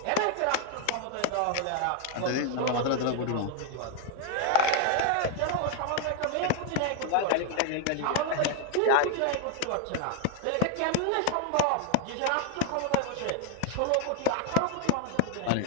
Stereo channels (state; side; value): different; both; correlation 0.01